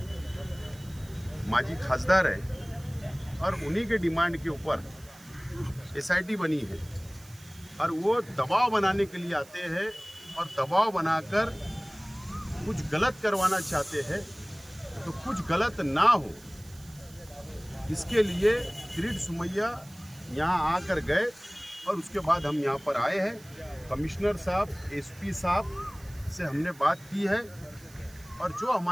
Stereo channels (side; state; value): right; noise; hiss, 23 dB below the sound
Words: माजी खासदार है, और उन्हीं के डिमांड के ऊपर एसआईटी बनी है। और वो दबाव बनाने के लिए आते हैं और दबाव बनाकर कुछ गलत करवाना चाहते हैं, तो कुछ गलत ना हो इसके लिए किरीट सोमैया यहाँ आकर गए, और उसके बाद हम यहाँ पर आए हैं। कमिश्नर साहब, एसपी साहब से हमने बात की है, और जो